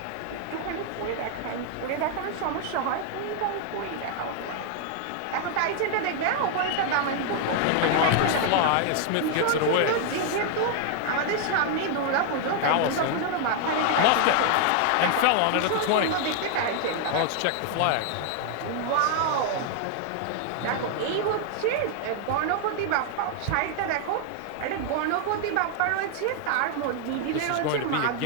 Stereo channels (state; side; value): different; both; correlation 0.00